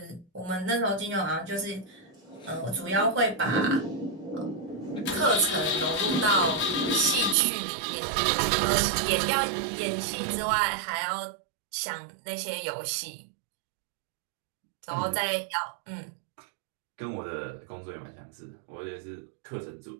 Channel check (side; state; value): left; drops out; at 7.4 s